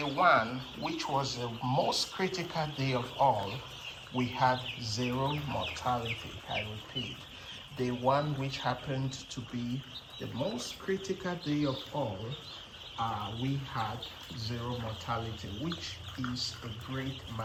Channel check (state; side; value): identical; both; correlation 1.00